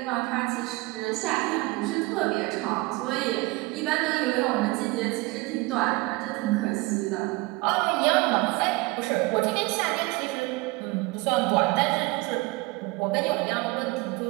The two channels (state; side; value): quieter; left; 23.0 dB